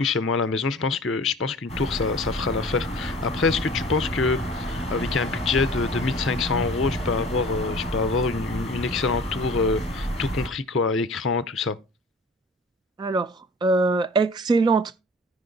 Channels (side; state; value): both; normal; correlation 0.44